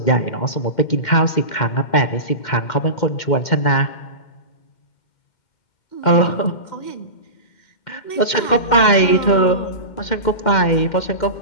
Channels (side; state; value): right; late; 2.1 ms